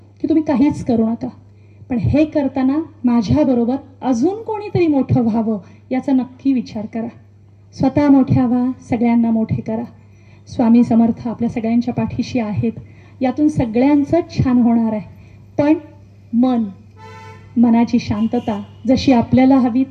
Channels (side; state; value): both; identical; correlation 1.00